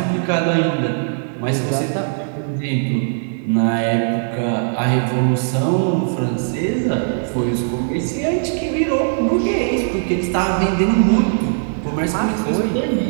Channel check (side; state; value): left; silent; digital silence